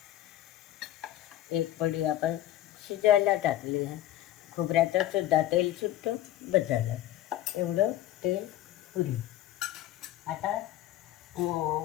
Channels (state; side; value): quieter; right; 13.3 dB